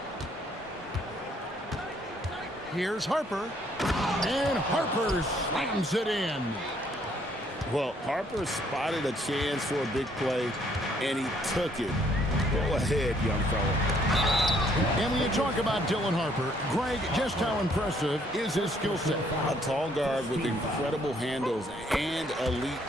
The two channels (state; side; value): normal; both; correlation 0.66